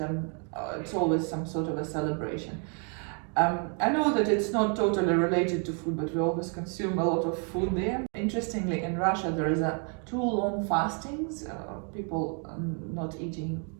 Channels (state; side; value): quieter; left; 39.7 dB